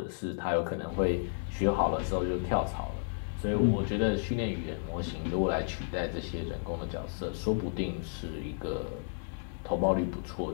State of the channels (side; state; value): right; silent; digital silence